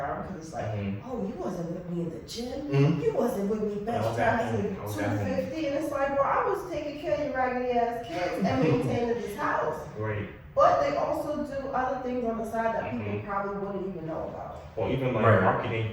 because it's like, Mhm. oh, you wasn't with me in the gym. Mhm. You wasn't with me bench I was at pressing home. I was at home. 250, and it's like, well, I was taking care of your raggedy ass kids and maintaining this house. Right. But they also do other things on the side that people Mhm. probably wouldn't even know about. Or even like Right. marketing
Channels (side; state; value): both; identical; correlation 1.00